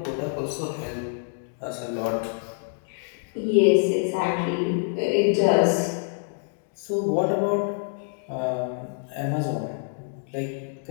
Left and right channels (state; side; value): silent; right; digital silence